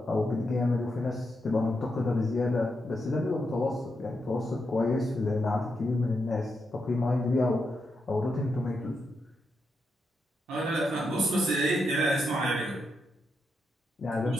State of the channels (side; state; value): both; normal; correlation 0.84